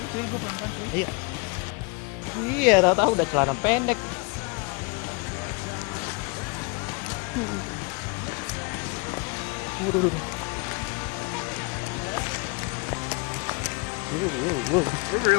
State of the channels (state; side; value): quieter; right; 31.1 dB